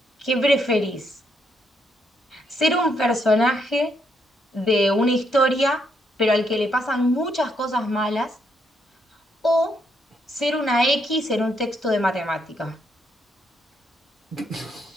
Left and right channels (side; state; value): both; normal; correlation 0.75